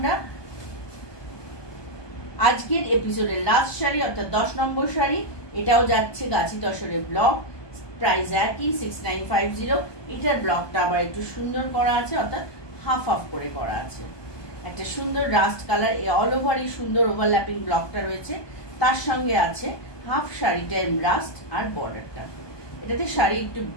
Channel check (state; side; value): late; right; 1.2 ms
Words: আজকের এপিসোডের লাস্ট শাড়ি অর্থাৎ 10 নম্বর শাড়ি, এটাও যাচ্ছে গাছি তসরের ব্লক, প্রাইস একই 6950। এটার ব্লকটা আবার একটু সুন্দর করা আছে, অর্থাৎ হাফ হাফ করে করা আছে। একটা সুন্দর রাস্ট কালার, অল ওভারই সুন্দর ওভারল্যাপিং ব্লকটা রয়েছে, তার সঙ্গে আছে হাফ শাড়িটার রাস্ট আর বর্ডারটা। এটাতে শাড়ি একটু